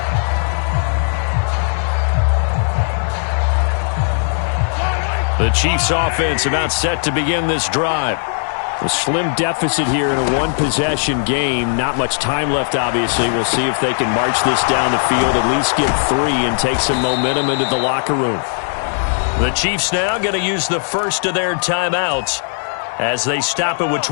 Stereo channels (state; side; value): silent; right; digital silence